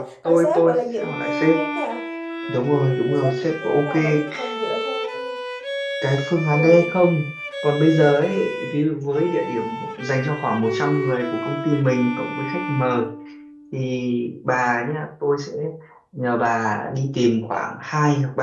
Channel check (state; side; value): identical; both; correlation 1.00